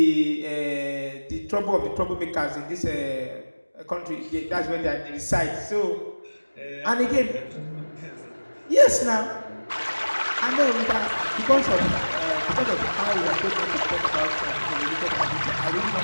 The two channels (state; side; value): inverted; both; correlation -1.00